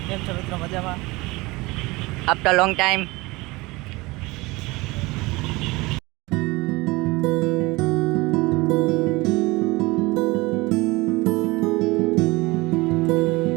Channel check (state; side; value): quieter; left; 22.7 dB